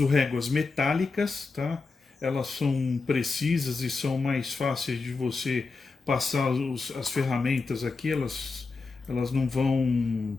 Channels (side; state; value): right; quieter; 4.2 dB